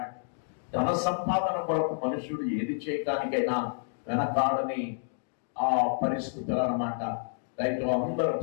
ధన సంపాదన కొరకు మనుషుడు ఏది చేయడానికైనా వెనకాడని ఆ పరిస్థితులు అన్నమాట. రైతు అందరూ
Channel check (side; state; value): right; silent; digital silence